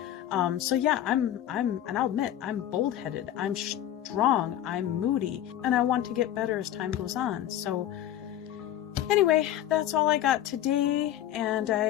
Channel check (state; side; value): quieter; right; 12.0 dB